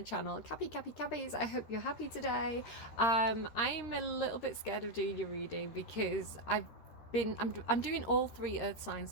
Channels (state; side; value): late; right; 13 ms